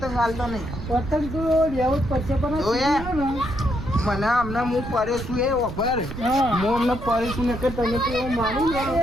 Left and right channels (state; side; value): noise; right; rumble, 9 dB below the sound